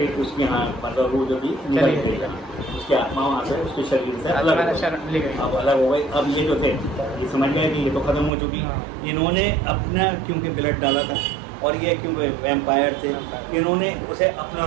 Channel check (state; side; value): drops out; left; at 8.3 s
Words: उसकी हाँ मतलब वो जो थी निकल गई, उसकी आत्मा वहाँ से उसके शरीर से अलग हो गई। अब ये जो थे ये समझ गए कि ये तो खत्म हो चुकी। इन्होंने अपना क्योंकि ब्लड डाला था और ये क्योंकि वैम्पायर थे, इन्होंने उसे अपना